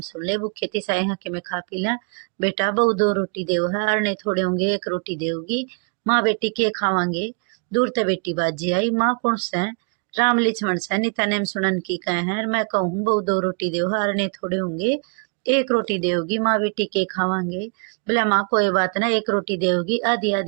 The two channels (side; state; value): left; quieter; 36.7 dB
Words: सुन ले, भूखे थी साई हाँ कि मैं खा पी ला। बेटा बहु दो रोटी देव है, आरने थोड़े होंगे एक रोटी देवगी। माँ बेटी के खावांगे। दूर ते बेटी बाजी आई, माँ कौन से राम लक्ष्मण से नीता नेम सुनन की कहे हैं। मैं कहूँ बहु दो रोटी देव है, आरने थोड़े होंगे एक रोटी देवगी, माँ बेटी के खावांगे। बोला माँ कोई बात ना, एक रोटी देवगी आधी